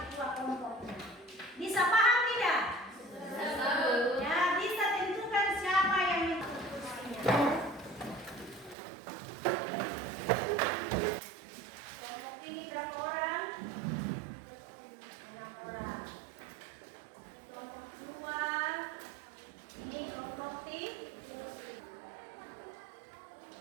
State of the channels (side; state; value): left; drops out; at 8.8 s